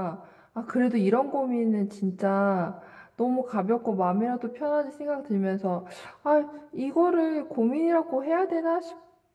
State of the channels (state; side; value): identical; both; correlation 1.00